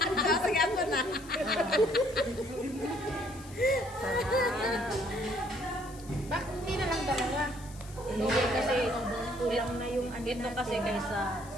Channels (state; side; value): noise; left; hiss, 20 dB below the sound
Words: Sige ako na. bakit hindi na lang dalawa? Hindi kasi kulang na yung ano ito natin. kasi kaysa